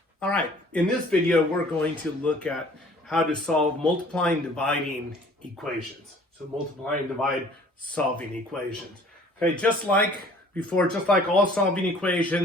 All right, in this video, we're going to look at how to solve multiplying and dividing equations. So multiply and divide solving equations. Okay, just like before, just like all solving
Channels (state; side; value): normal; both; correlation 0.53